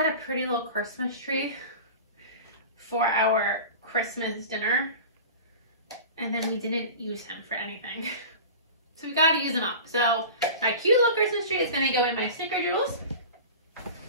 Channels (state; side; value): inverted; both; correlation -0.35